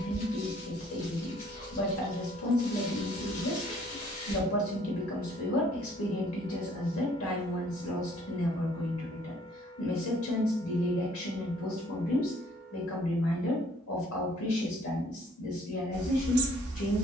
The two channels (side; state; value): both; normal; correlation 0.60